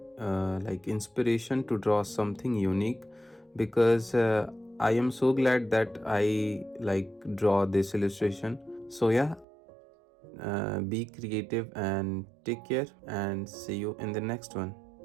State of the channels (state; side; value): drops out; left; at 9.5 s